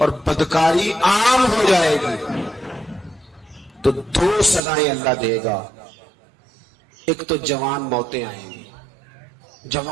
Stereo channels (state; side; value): drops out; left; at 4.6 s